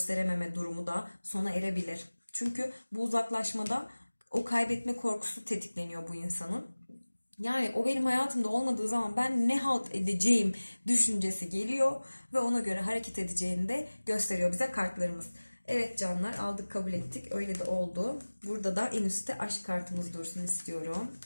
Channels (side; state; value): both; inverted; correlation -1.00